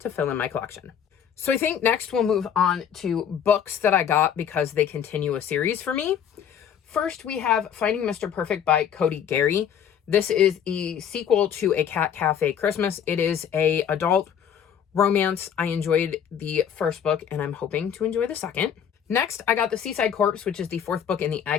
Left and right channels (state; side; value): quieter; right; 8.5 dB